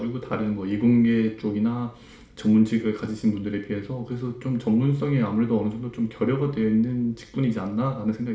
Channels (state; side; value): identical; both; correlation 1.00